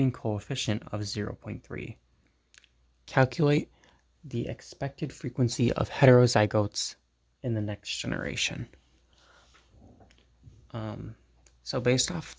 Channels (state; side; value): identical; both; correlation 1.00